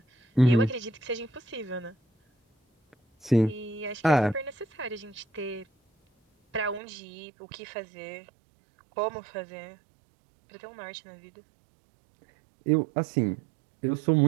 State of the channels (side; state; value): left; drops out; at 6.8 s